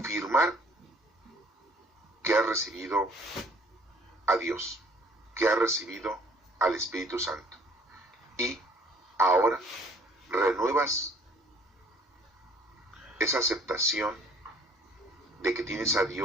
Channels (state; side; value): normal; both; correlation 0.57